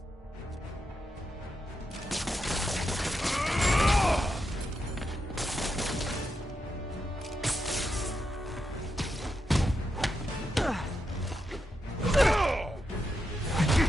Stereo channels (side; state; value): both; normal; correlation 0.85